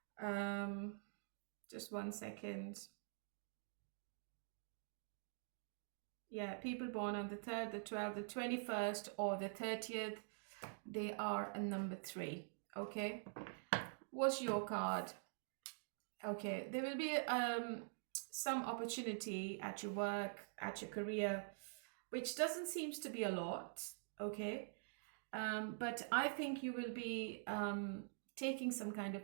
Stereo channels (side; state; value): left; silent; digital silence